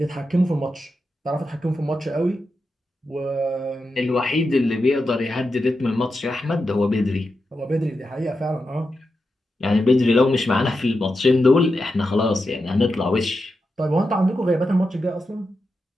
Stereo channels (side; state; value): both; normal; correlation 0.88